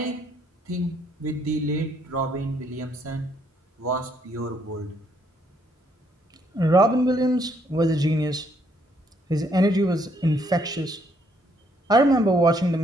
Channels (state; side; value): normal; both; correlation 0.70